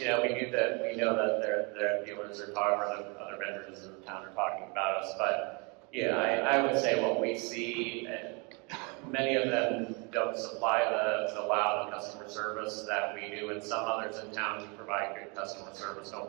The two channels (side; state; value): left; quieter; 31.6 dB